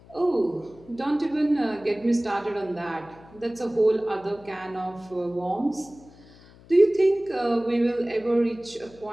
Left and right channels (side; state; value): left; noise; hum, 24 dB below the sound